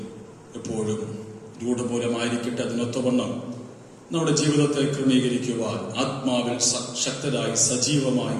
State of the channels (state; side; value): identical; both; correlation 1.00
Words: എപ്പോഴും രൂഢമൂലമായിരിക്കട്ടെ. അതിനൊത്തവണ്ണം നമ്മുടെ ജീവിതത്തെ ക്രമീകരിക്കുവാൻ, ആത്മാവിൽ ശക്തരായി സജീവമായി